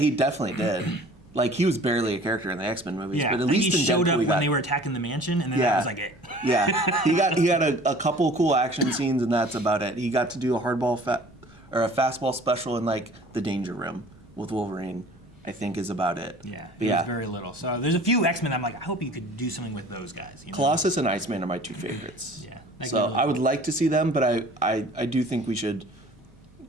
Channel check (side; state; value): both; normal; correlation 0.48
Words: definitely did. Like, he was barely a character in the X-Men movies, but at least he in showed Deadpool, up when they were attacking the mansion, and then that was like it. Yeah, he got a couple cool action scenes, and that's about it. He got to do a a fastball special in like the Danger Room with Wolverine. I think is about it. Yeah, it was very little. So there's a few X-Men I'm like, I hope you could do something with those guys. You know? Colossus and Iceman are my two favorites. Yeah. So I would like to see them, but I do think we should